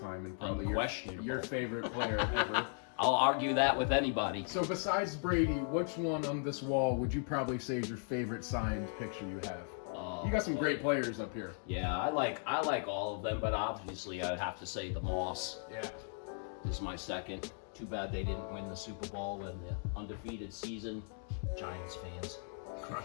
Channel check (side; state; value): right; silent; 53 dB below the other